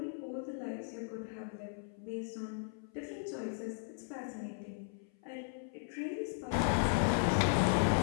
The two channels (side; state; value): right; silent; 53 dB below the other